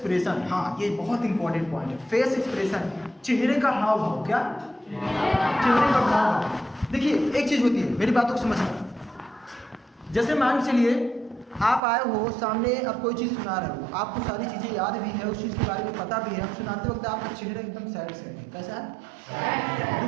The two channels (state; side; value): drops out; left; at 11.8 s